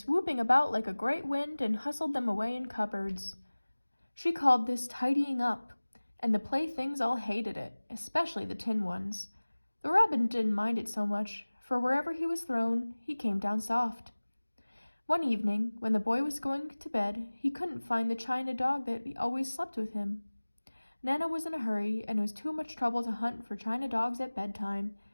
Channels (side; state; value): both; inverted; correlation -1.00